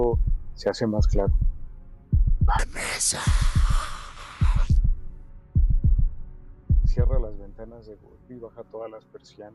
se hace más claro. ¡Vanessa! Cierra las ventanas de golpe y baja todas las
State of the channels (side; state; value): both; identical; correlation 1.00